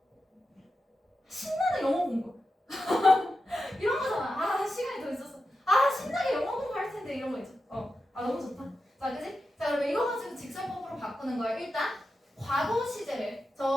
신나는 영어 공부 이런 거잖아. 아 시간이 더 있었어. 아 신나게 영어 공부할 텐데 이런 거 있죠. 아 너무 좋다. 자 그지? 자 그러면 이거 가지고 직설법으로 바꾸는 거예요. 일단 과거 시제를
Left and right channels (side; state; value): both; normal; correlation 0.90